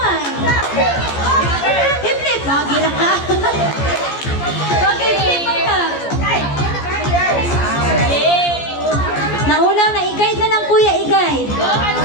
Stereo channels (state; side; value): late; right; 14 ms